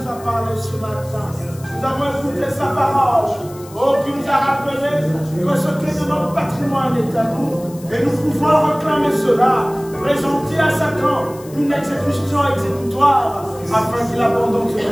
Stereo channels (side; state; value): left; noise; hiss, 21 dB below the sound